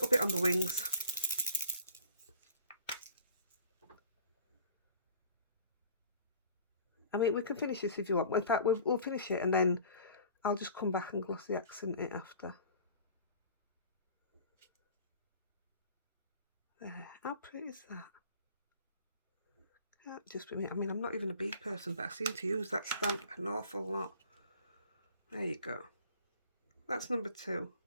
bit on the wings. I mean, we can finish this if you want. In fact, we'll finish it and then I'll just come back and glossy accent it after. There. How pretty is that? Can't just be me. I mean, I'm not even a bee person, but I seem to use that stamp an awful lot. There you go. That's number 2.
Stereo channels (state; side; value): inverted; both; correlation -0.47